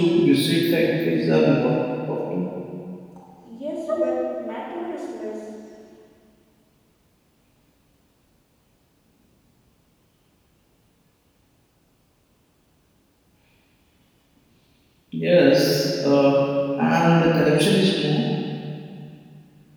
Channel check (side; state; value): both; identical; correlation 1.00